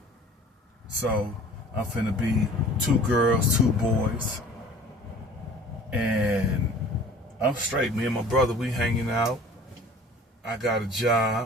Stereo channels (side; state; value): both; normal; correlation 0.46